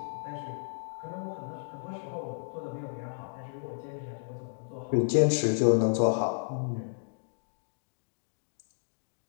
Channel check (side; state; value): right; silent; digital silence